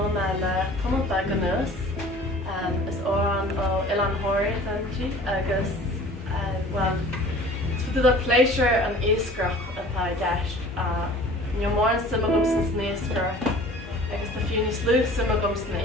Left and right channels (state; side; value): normal; both; correlation 0.46